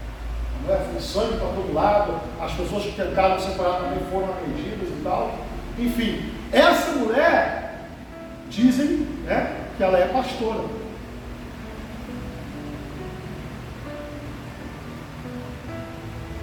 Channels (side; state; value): both; identical; correlation 1.00